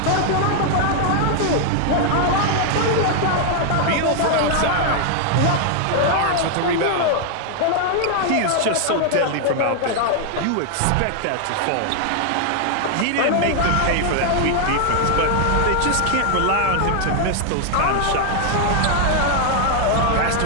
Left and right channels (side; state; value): both; different; correlation 0.00